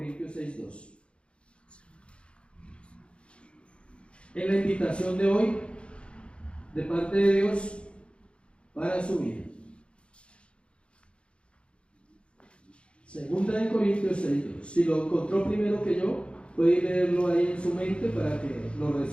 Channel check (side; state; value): right; late; 0.058 ms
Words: 6:2. En la invitación de hoy, de parte de Dios, para su vida. 2 Corintios 6:2. Si lo encontró primero que yo, puede leerlo ahí en su mente para que lo